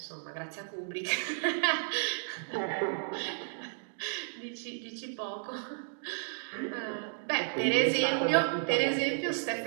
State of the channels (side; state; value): left; silent; digital silence